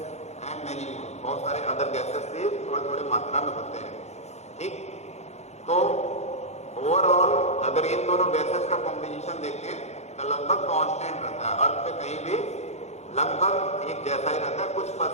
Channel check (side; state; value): right; late; 0.32 ms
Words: and many बहुत सारे अदर गैसेस भी थोड़े थोड़े मात्रा में होते हैं। ठीक, तो ओवरऑल अगर इन दोनों गैसेस का कॉम्बिनेशन देखें तो लगभग कांस्टेंट रहता है, अर्थ पे कहीं भी लगभग एक जैसा ही रहता है। कुछ